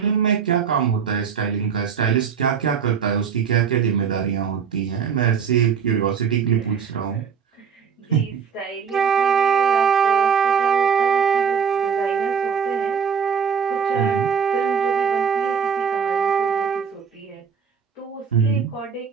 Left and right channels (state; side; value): quieter; left; 6.8 dB